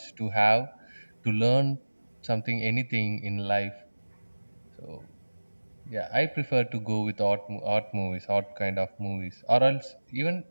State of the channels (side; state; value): both; inverted; correlation -1.00